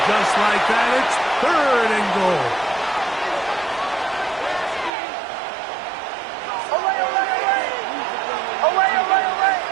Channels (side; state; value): left; drops out; at 4.9 s